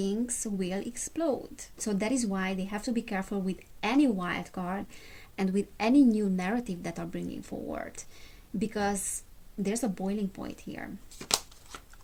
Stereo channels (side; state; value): both; identical; correlation 1.00